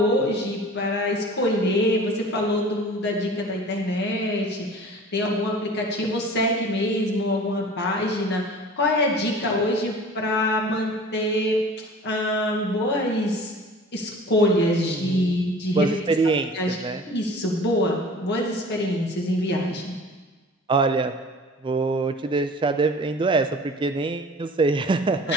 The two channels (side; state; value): both; normal; correlation 0.43